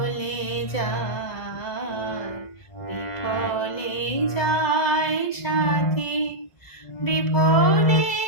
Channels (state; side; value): late; right; 1.9 ms